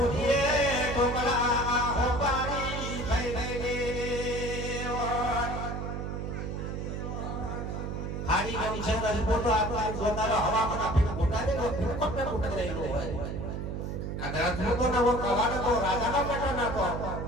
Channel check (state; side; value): noise; right; hum, 4 dB below the sound